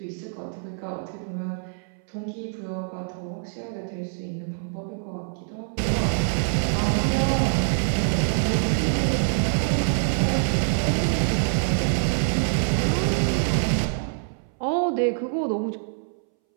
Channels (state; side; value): silent; left; 62 dB below the other